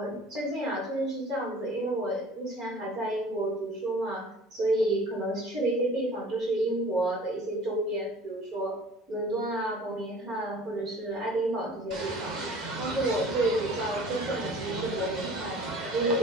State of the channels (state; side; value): normal; both; correlation 0.46